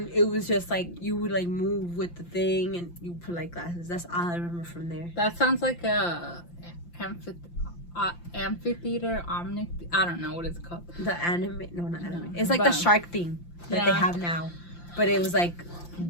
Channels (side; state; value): right; late; 5.8 ms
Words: it was just like you would like move with the thing and you put like glasses. That's all I remember from there. That sounds like a amphitheater, I don't know what it's called. The anime, no, not anime. It's like the shark thing that they have now, but it was like